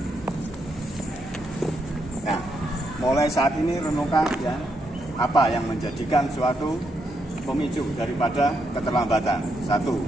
Nah, mulai saat ini renungkan ya, apa yang menjadikan suatu pemicu daripada keterlambatan. Satu,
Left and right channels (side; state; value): both; normal; correlation 0.79